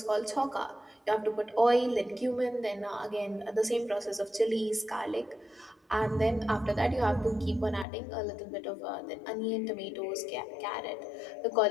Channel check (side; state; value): right; drops out; at 7.9 s